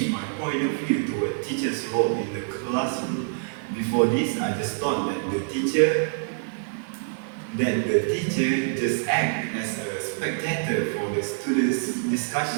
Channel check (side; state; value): left; silent; 61 dB below the other